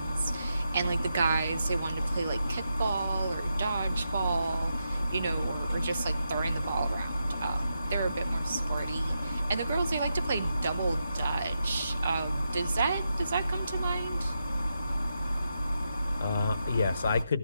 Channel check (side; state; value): both; inverted; correlation -0.85